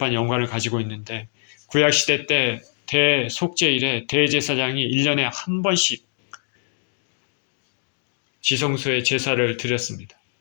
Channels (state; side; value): silent; right; digital silence